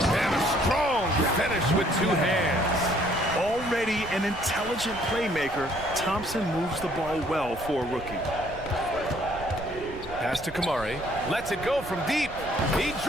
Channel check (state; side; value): noise; right; rumble, 16 dB below the sound